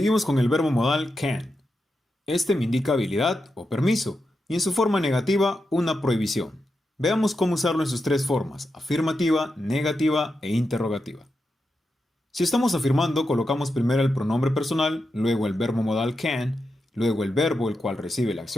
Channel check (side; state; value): both; normal; correlation 0.87